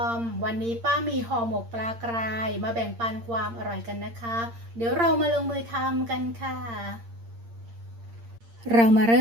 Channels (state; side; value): late; left; 8.7 ms